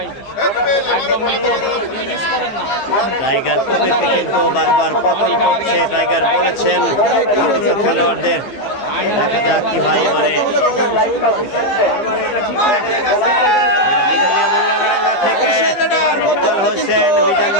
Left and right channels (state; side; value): late; right; 15 ms